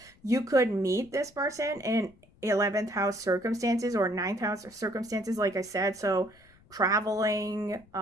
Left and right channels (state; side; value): noise; left; rumble, 28 dB below the sound